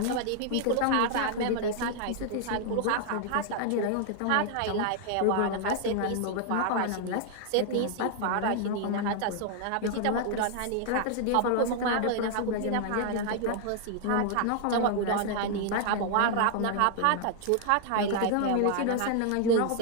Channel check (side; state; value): both; different; correlation 0.00